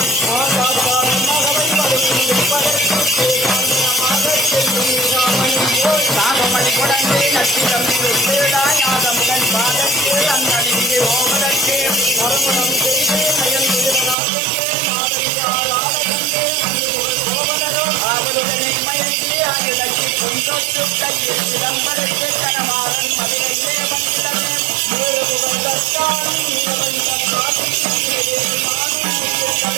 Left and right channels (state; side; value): drops out; left; at 14.2 s